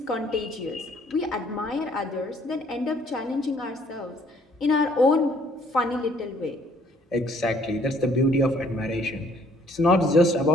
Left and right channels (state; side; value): normal; both; correlation 0.62